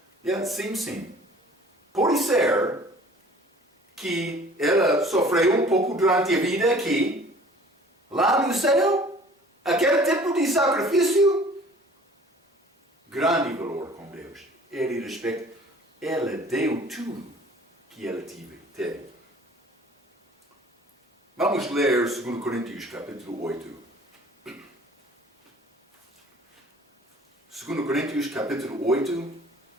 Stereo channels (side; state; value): both; normal; correlation 0.50